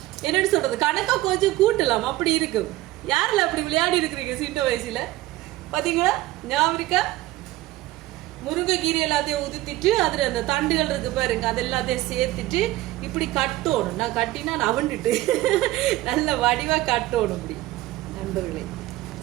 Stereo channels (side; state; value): left; quieter; 17.1 dB